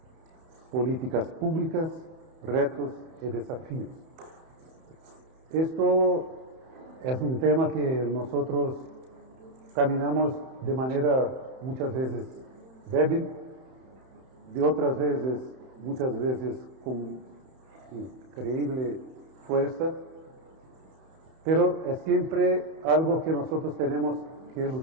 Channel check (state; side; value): late; left; 31 ms